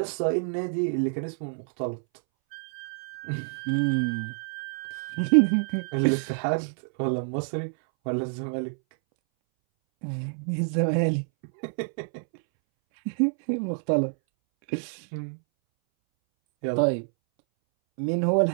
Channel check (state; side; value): silent; left; 60 dB below the other